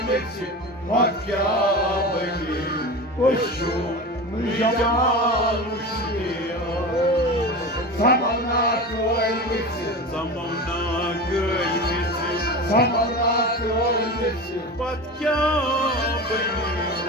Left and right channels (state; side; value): normal; both; correlation 0.28